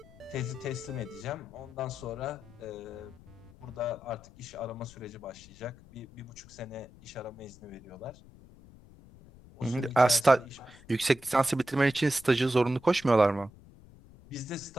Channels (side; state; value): left; noise; rumble, 22 dB below the sound